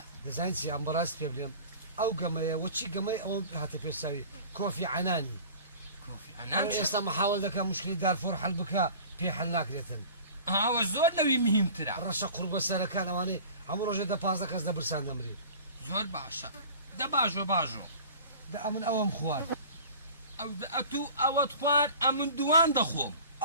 دەزانین چی ئەم بەڕاست پێ بڵێم ئەو گەمەیە وەچی گەمەی ئەوە هاتە پێساوی کۆفی عنانی ئێستا محاوڵ دەکە مشکلی دارفۆر حەل بکە پێ حەل ناکرێتن ئەوە زۆر لەوی مهمترە ڕەشە قوربە سەرەکان ئەوانەی هەموو ڕۆژێ 15 کەس دەبرسان دەمری زۆر باشە دە باژۆ دە ئەمن ئەوەم خوارد ئەو ئەتوو ئەوەت خوارد ئەمن دوان دەخۆم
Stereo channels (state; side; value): inverted; both; correlation -0.42